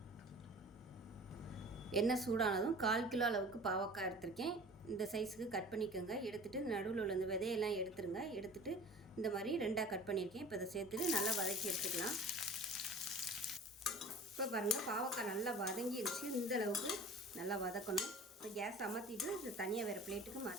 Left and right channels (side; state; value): both; normal; correlation 0.41